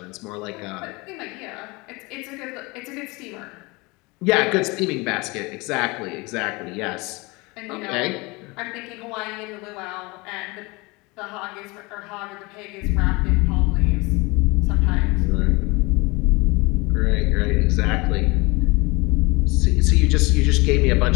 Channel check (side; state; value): right; quieter; 25.1 dB